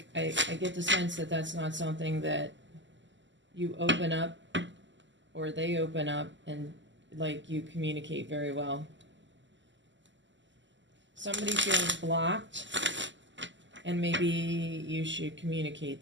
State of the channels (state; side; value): late; left; 0.54 ms